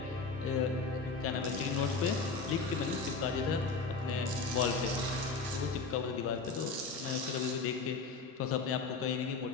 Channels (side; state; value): right; quieter; 4.2 dB